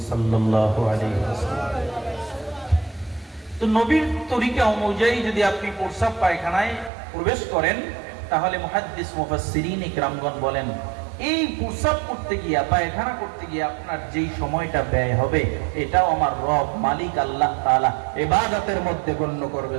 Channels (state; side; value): drops out; left; at 6.9 s